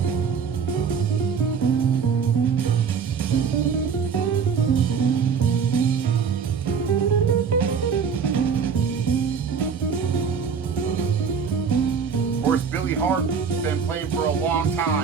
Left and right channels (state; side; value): quieter; left; 6.4 dB